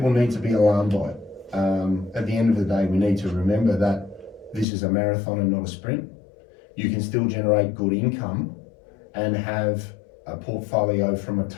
need to be alarmed by it. At the end of the day, we need to remember that this is a marathon and not a sprint. You can still generate good income and have a portfolio from a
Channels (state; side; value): drops out; right; at 4.7 s